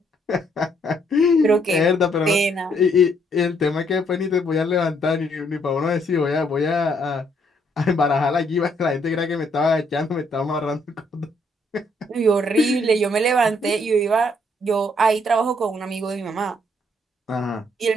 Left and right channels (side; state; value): both; normal; correlation 0.70